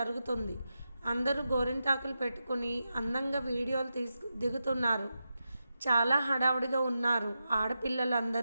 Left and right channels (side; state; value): both; inverted; correlation -0.89